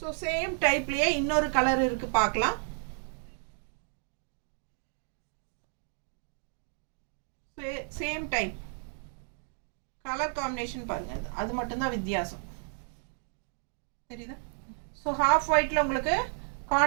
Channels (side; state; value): left; silent; 57 dB below the other